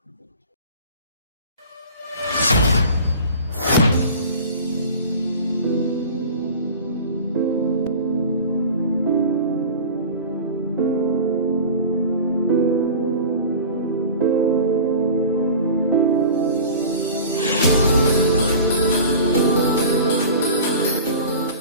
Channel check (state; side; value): inverted; both; correlation -0.37